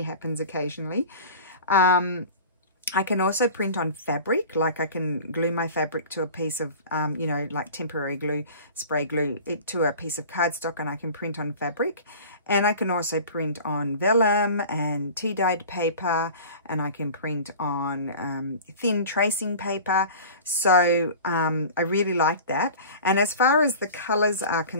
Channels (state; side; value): inverted; both; correlation -0.39